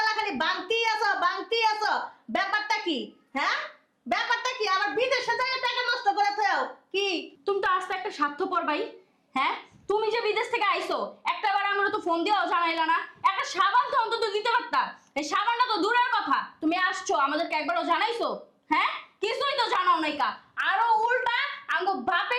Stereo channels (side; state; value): both; identical; correlation 1.00